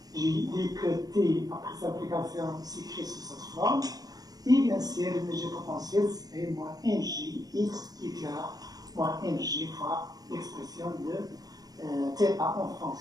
j'ai dit que T, après cette application, s'écrit sous cette forme. Et bien sûr, l'énergie potentielle, c'est moins mg x qui est là, moins mg fois l'expression de θ en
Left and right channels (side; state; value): left; late; 0.18 ms